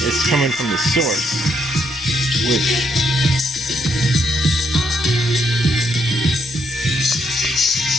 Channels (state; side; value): normal; both; correlation 0.75